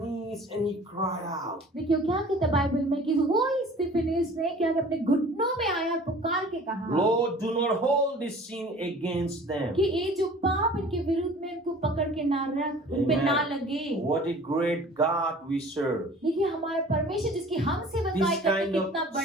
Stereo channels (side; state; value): both; normal; correlation 0.47